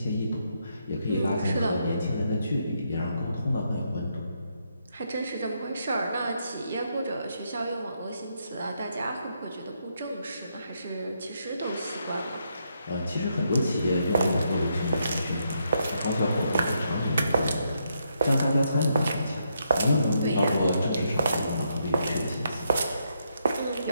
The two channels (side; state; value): both; inverted; correlation -0.78